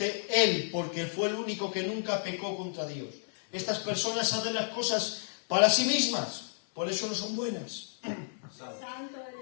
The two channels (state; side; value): silent; right; 57 dB below the other